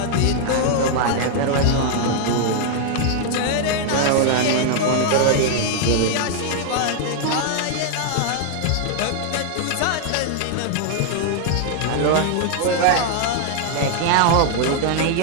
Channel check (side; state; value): both; different; correlation 0.00